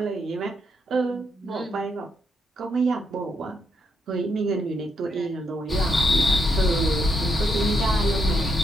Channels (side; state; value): both; normal; correlation 0.78